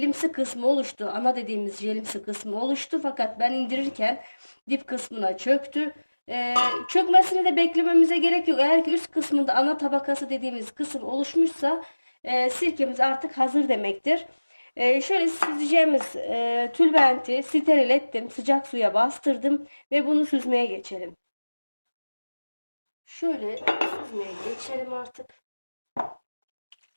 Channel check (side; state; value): both; inverted; correlation -1.00